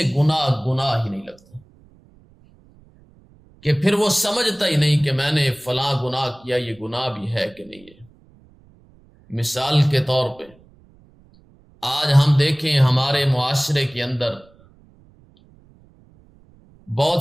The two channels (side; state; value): right; noise; rumble, 29 dB below the sound